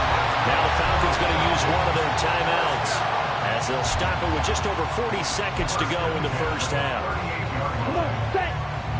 Now the Falcons going to use one of their timeouts as they'll stop it with just over 40 seconds to go in the first half. Come on, set.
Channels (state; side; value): identical; both; correlation 1.00